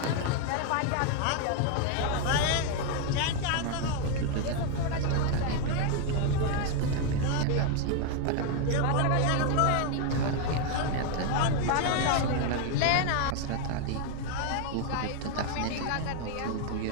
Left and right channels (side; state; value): both; different; correlation 0.01